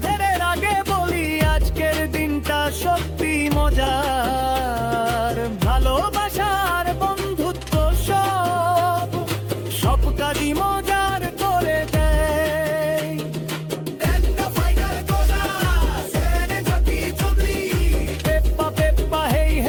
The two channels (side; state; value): both; identical; correlation 1.00